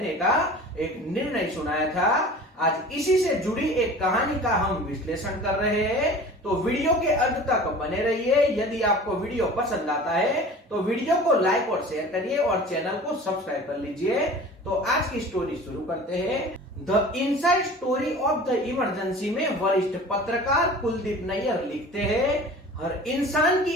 का एक निर्णय सुनाया था। आज इसी से जुड़ी एक कहानी का हम विश्लेषण कर रहे हैं, तो वीडियो के अंत तक बने रहिए। यदि आपको वीडियो पसंद आता है तो वीडियो को लाइक और शेयर करिए और चैनल को सब्सक्राइब कर लीजिए। तो आज की स्टोरी शुरू करते हैं। The inside story of the emergency में वरिष्ठ पत्रकार कुलदीप नैयर लिखते हैं, हर इंसान की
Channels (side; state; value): both; normal; correlation 0.41